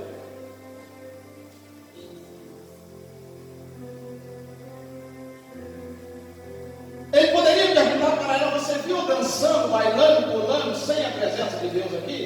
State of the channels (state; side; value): identical; both; correlation 1.00